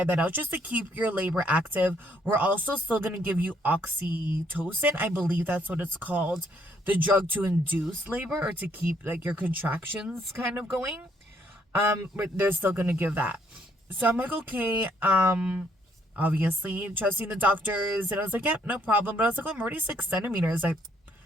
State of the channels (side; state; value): both; normal; correlation 0.68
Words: that out just to keep your labor active. We're also still going to give you oxytocin. I believe that's what it's called. The drug to induce labor or to keep like your contractions kind of going. But they're still going to give that. So I'm like, okay, obviously trusting the doctors. And I was like, yeah, no problem. But I was like, oh, I'm already 6 centimeters. I